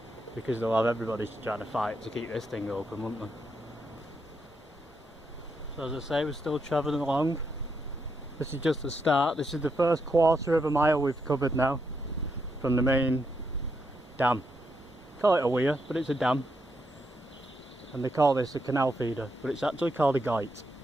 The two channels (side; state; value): both; normal; correlation 0.80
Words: because they'll have everybody trying to fight to keep this thing open, won't they? So as I say, we're still travelling along. This is just the start. This is the first quarter of a mile we've covered now from the main dam. Call it a weir, but it's a dam. And they call this a canal feeder, but it's actually called a guyt.